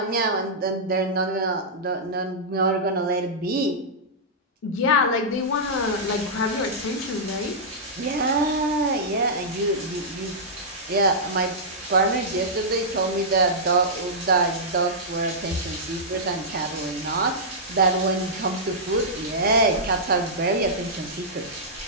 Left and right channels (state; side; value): normal; both; correlation -0.12